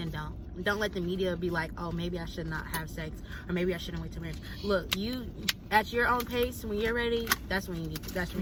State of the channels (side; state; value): both; identical; correlation 1.00